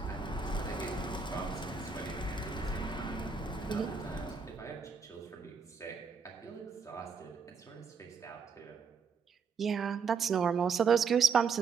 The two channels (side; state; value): left; quieter; 5.6 dB